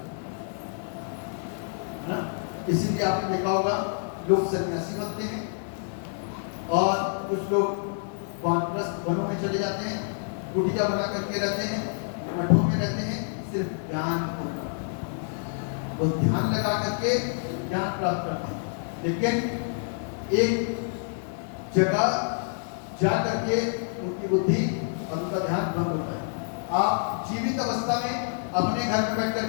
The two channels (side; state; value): right; silent; digital silence